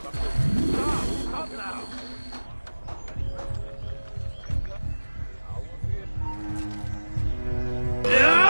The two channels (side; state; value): both; inverted; correlation -1.00